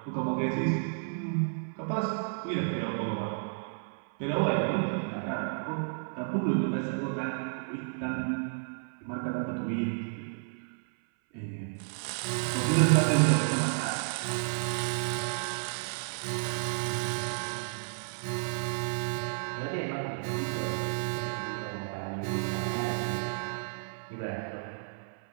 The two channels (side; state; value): left; silent; 56 dB below the other